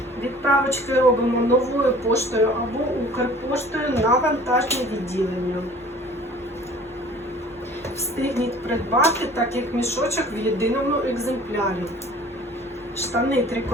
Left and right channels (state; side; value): normal; both; correlation 0.48